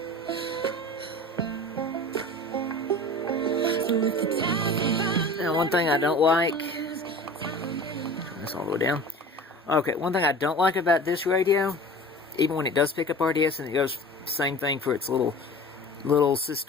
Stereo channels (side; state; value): both; normal; correlation 0.39